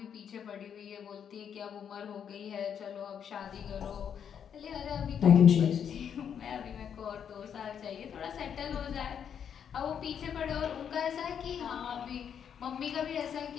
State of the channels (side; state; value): right; quieter; 8.1 dB